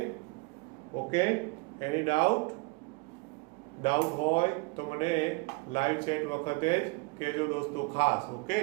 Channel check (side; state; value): left; quieter; 27.1 dB